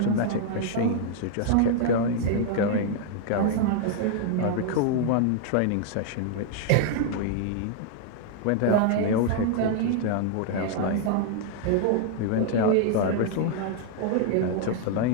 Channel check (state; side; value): different; both; correlation -0.01